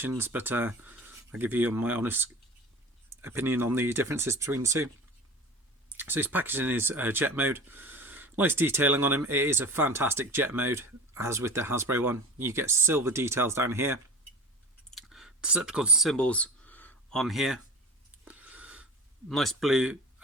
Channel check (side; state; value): both; normal; correlation 0.36